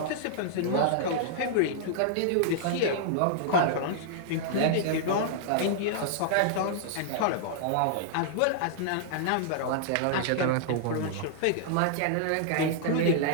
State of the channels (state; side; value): different; both; correlation -0.01